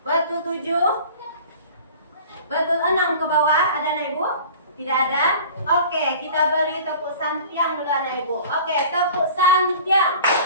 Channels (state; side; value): inverted; both; correlation -0.44